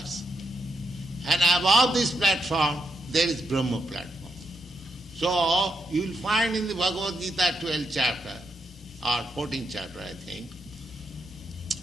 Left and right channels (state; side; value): normal; both; correlation 0.81